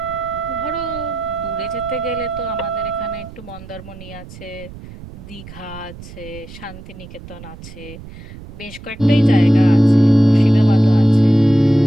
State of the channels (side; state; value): right; noise; rumble, 16 dB below the sound